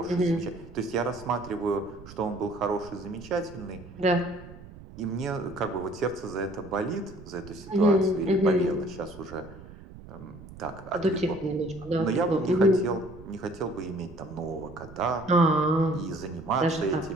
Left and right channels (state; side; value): noise; right; rumble, 17 dB below the sound